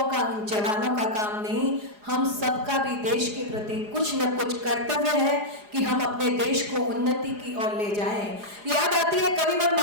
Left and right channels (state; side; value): late; left; 4.8 ms